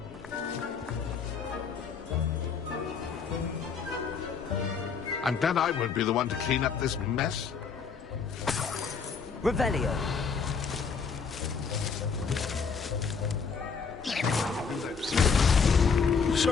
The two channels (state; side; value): quieter; right; 5.7 dB